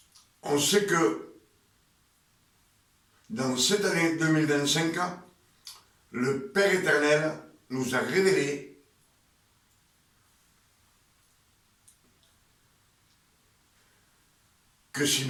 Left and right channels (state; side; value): identical; both; correlation 1.00